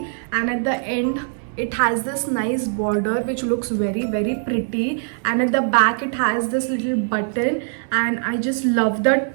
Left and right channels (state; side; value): silent; left; 59 dB below the other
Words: and at the end it has this nice border which looks very pretty, and at the back it has this little button. And I just love the